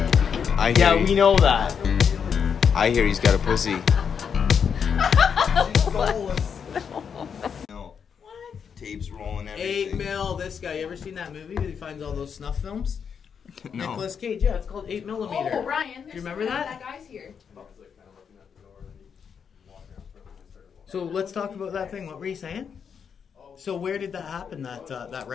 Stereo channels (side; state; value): right; quieter; 7.0 dB